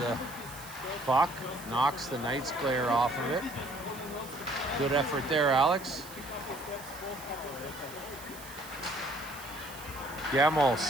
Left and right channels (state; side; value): noise; right; hiss, 16 dB below the sound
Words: puck. Knocks the Knights player off of it. Good effort there, Alex. Gemmel